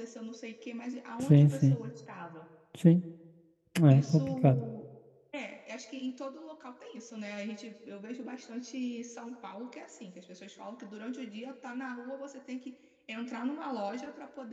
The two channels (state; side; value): identical; both; correlation 1.00